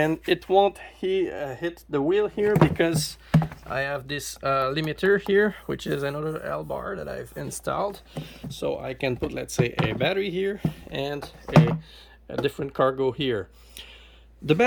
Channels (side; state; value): both; identical; correlation 1.00